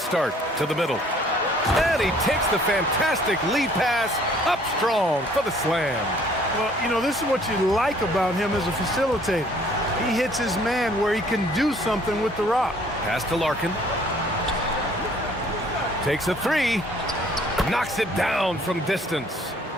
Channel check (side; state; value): both; normal; correlation 0.58